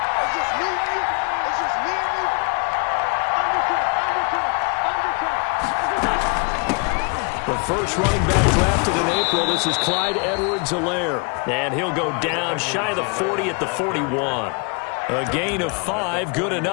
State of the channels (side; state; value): right; quieter; 34.7 dB